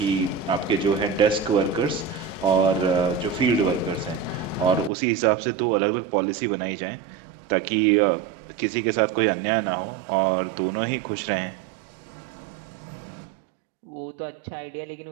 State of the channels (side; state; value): left; drops out; at 4.9 s